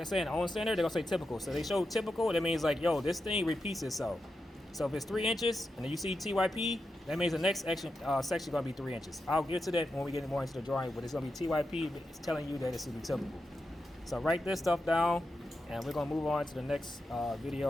said, on center, they're gonna say typical. So they show typical, that means like, yo, this thing repeats itself. So if it's 3 inches and then you see TYP, that means the next section is gonna be 3 inches. I'll get to that when we get more into the drawing, but it's gonna be TYP. It's telling you that it's gonna be typical. So write this stuff down and we're gonna move on to the next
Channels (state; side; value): normal; both; correlation 0.88